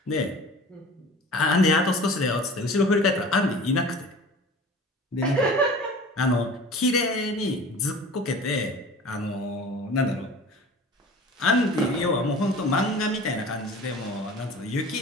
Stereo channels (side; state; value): both; normal; correlation 0.41